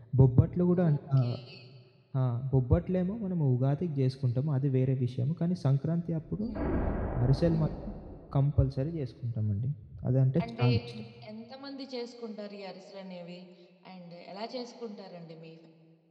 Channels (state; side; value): identical; both; correlation 1.00